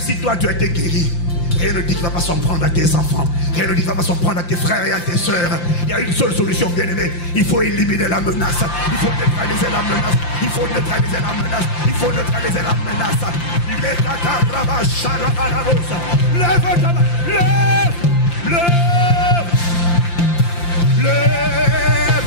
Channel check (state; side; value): late; right; 5.8 ms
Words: toi tu as été guéri, rien ne dit qu'il ne va pas s'en prendre à tes enfants. Rien ne dit qu'il ne va pas s'en prendre à tes frères et à tes soeurs. Il y a une seule solution, bien-aimé. Il faut éliminer la menace. Il faut neutraliser la menace. Il faut neutraliser la menace. Il faut neutraliser la menace. Lève ta main. Lève